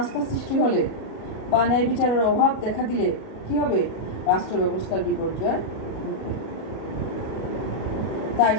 সৃষ্টি হলে বা ন্যায় বিচারের অভাব দেখা দিলে কি হবে? রাষ্ট্র ব্যবস্থার বিপর্যয় ঘটবে। তাই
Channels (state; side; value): late; right; 37 ms